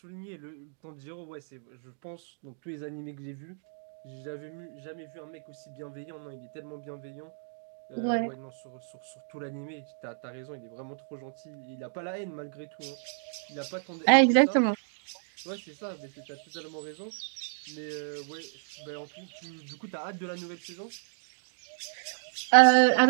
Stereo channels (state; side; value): silent; left; digital silence